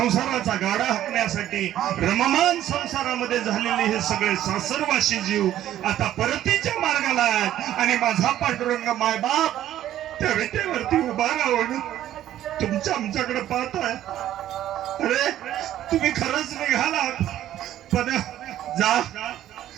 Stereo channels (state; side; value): quieter; left; 12.4 dB